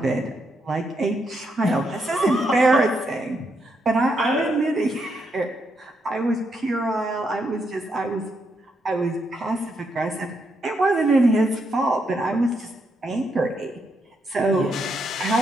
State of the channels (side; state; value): both; normal; correlation 0.79